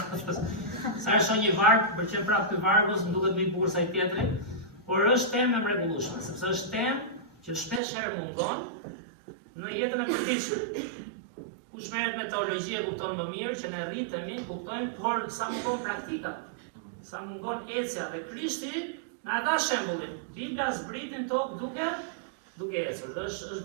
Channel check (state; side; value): drops out; left; at 7.8 s